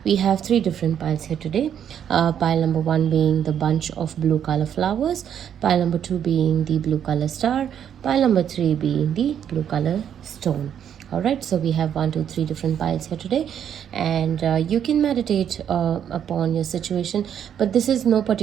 We have three different piles here today. Pile number one being the bunch of blue color flowers, pile number two being the blue color star, pile number three being the blue color stone. All right, so we have 1 2 3 different piles here today, and you can meditate upon your situation, but this is no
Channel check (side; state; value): left; quieter; 9.1 dB